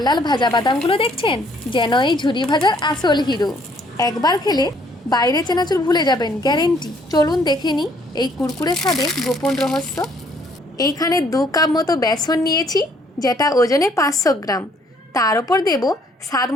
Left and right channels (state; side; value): normal; both; correlation 0.64